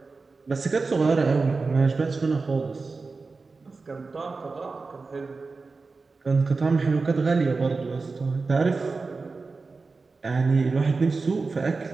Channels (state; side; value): quieter; left; 4.1 dB